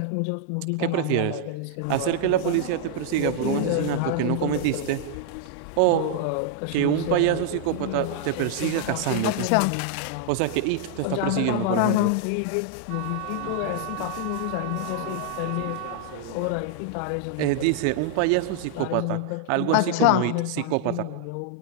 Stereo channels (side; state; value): both; different; correlation -0.01